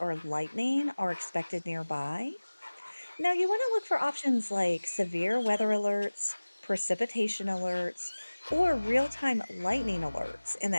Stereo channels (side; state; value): both; inverted; correlation -1.00